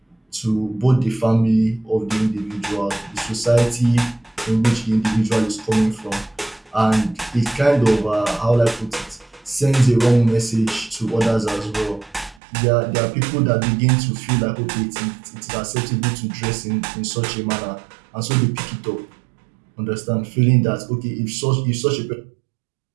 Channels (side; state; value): left; drops out; at 12.4 s